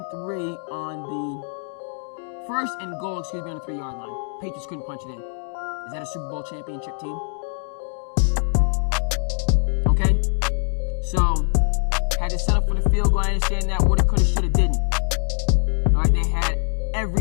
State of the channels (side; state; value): right; silent; digital silence